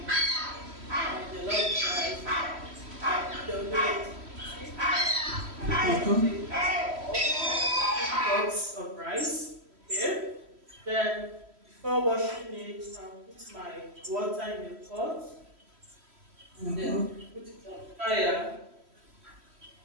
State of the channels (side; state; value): left; late; 3.1 ms